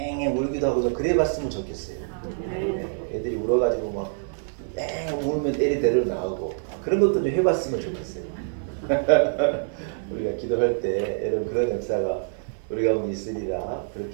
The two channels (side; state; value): left; silent; digital silence